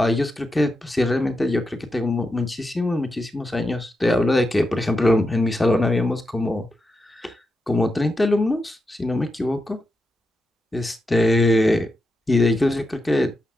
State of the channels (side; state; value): both; normal; correlation 0.87